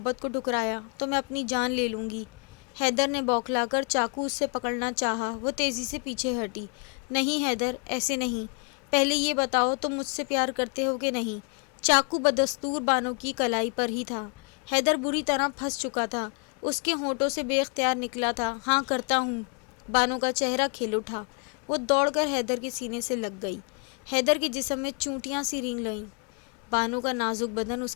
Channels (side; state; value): right; quieter; 37.1 dB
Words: کو ٹھکرایا تو میں اپنی جان لے لوں گی۔ حیدر نے بوکھلا کر چاقو اس سے پکڑنا چاہا۔ وہ تیزی سے پیچھے ہٹی۔ نہیں حیدر، ایسے نہیں، پہلے یہ بتاؤ تم مجھ سے پیار کرتے ہو کہ نہیں؟ چاقو بدستور بانو کی کلائی پر ہی تھا۔ حیدر بری طرح پھنس چکا تھا۔ اس کے ہونٹوں سے بے اختیار نکلا تھا، ہاں کرتا ہوں۔ بانو کا چہرہ کھل اٹھا۔ وہ دوڑ کر حیدر کے سینے سے لگ گئی۔ حیدر کے جسم میں چونٹیاں سی رینگ لئیں۔ بانو کا نازک بدن اس